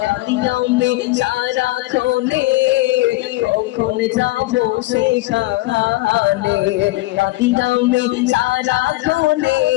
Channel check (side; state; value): right; quieter; 19.5 dB